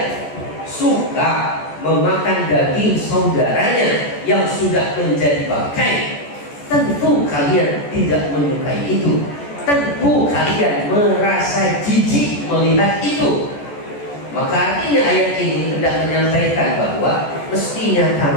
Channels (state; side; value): late; right; 14 ms